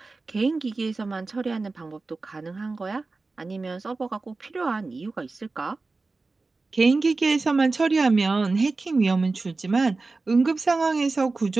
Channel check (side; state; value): left; quieter; 3.7 dB